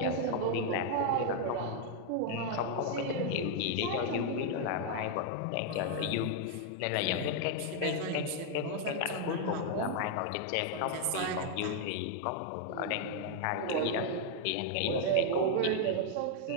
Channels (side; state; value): both; different; correlation 0.00